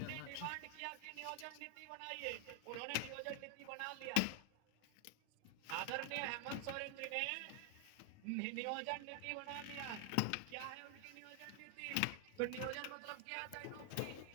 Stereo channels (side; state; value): both; different; correlation 0.00